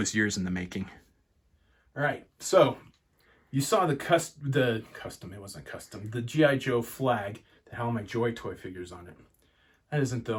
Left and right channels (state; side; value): identical; both; correlation 1.00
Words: years in the making. All right, so you saw the custom, it wasn't custom, the G.I. Joe flag that had all my Joy Toy figures on it. That isn't the